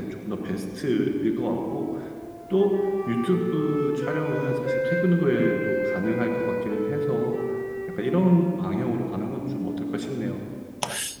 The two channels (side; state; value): both; identical; correlation 1.00